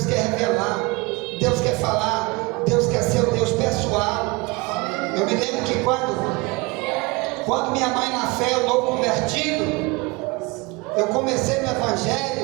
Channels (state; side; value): quieter; left; 25.7 dB